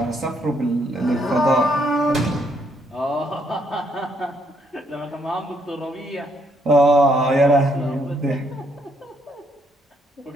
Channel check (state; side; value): normal; both; correlation 0.72